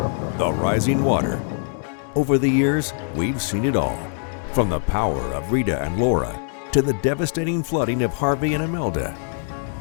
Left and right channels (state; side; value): silent; right; 64 dB below the other